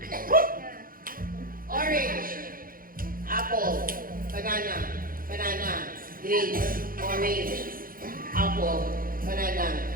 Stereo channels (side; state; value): left; late; 0.41 ms